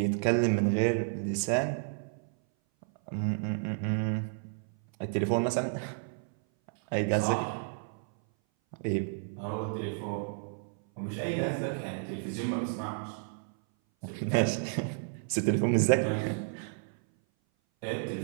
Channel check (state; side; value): silent; left; 57 dB below the other